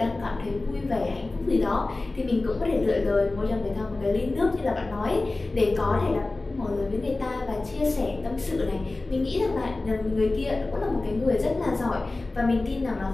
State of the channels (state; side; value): quieter; right; 3.1 dB